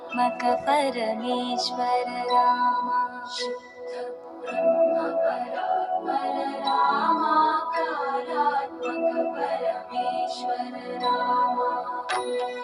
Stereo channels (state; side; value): identical; both; correlation 1.00